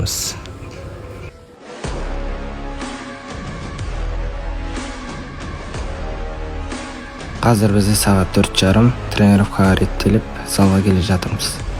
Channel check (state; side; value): identical; both; correlation 1.00